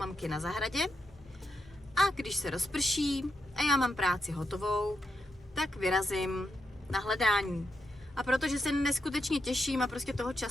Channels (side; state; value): both; normal; correlation 0.83